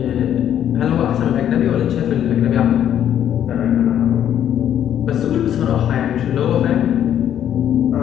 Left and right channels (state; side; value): quieter; right; 10.2 dB